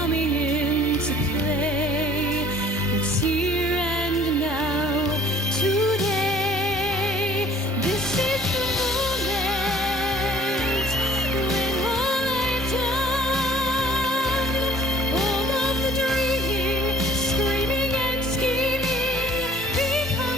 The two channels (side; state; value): both; normal; correlation 0.53